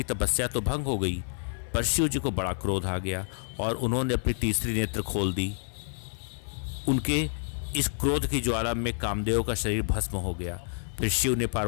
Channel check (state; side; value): silent; right; 59 dB below the other